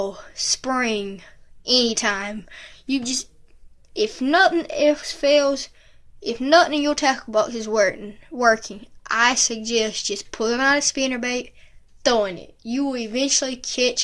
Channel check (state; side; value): identical; both; correlation 1.00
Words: spring, anytime. If nothing else fails, if nothing in your tackle box is working, I suggest just pulling out a spinnerbait, throwing it. You will eventually